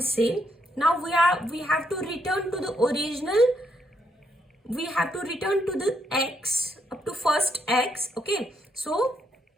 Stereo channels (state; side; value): normal; both; correlation 0.76